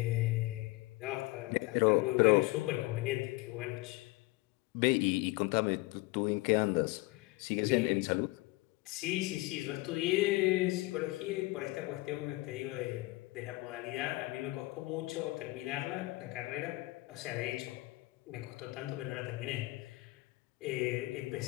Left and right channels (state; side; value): quieter; right; 21.7 dB